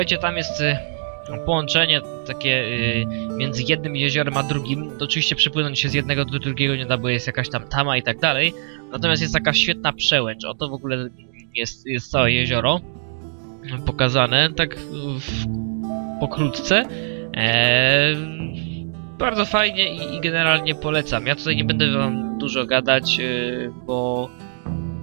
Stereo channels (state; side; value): silent; left; digital silence